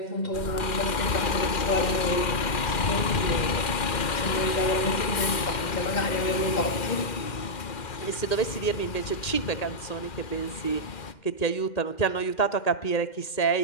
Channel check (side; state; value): right; late; 2.4 ms